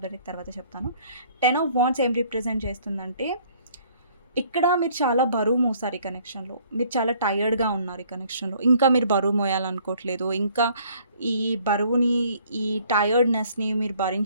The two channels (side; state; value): both; inverted; correlation -0.59